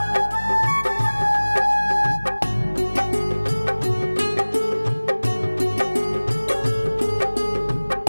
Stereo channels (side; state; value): both; inverted; correlation -1.00